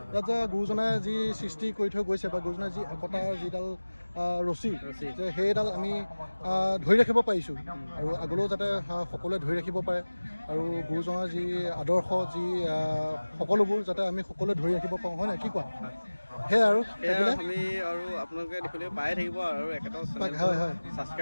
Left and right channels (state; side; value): inverted; both; correlation -1.00